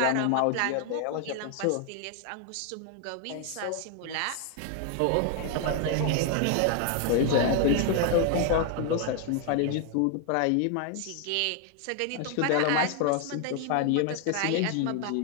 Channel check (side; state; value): both; different; correlation 0.00